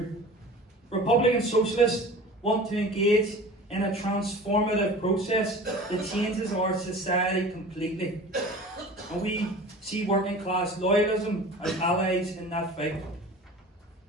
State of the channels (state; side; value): normal; both; correlation 0.39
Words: Republican socialists want to engage in a transformative process that changes our society completely. And we see working class loyalism as allies in that fight.